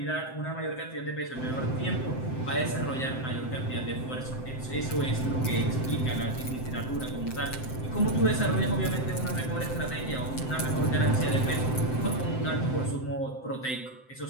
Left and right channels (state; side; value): late; right; 7.7 ms